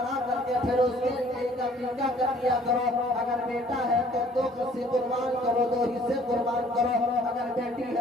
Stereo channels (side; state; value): both; normal; correlation 0.56